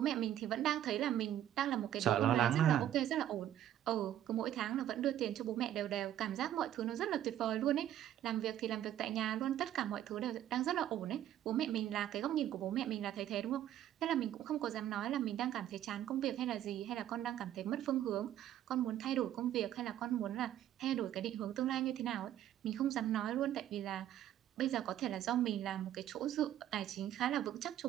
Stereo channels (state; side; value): quieter; left; 11.7 dB